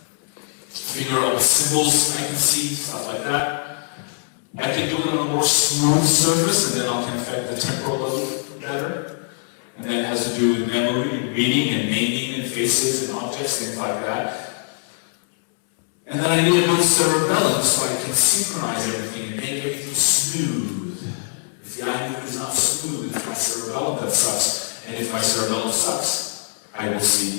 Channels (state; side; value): silent; right; 64 dB below the other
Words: Figure out symbols I can see, stuff like that. I can do it on a more smooth surface, and then I can affect the temporal lobe better. And that has to do with memory, reading, and naming, and faces, and objects, things like that. And then I need a good cerebellum so I can synchronize everything and make everything smooth. If the eye movement is not smooth, it's my cerebellum that sucks. And if my cerebellum sucks, I will see